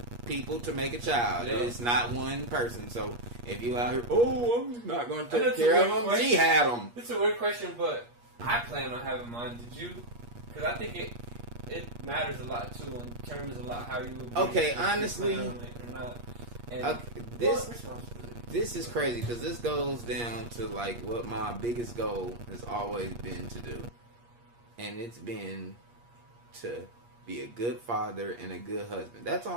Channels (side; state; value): left; late; 8.4 ms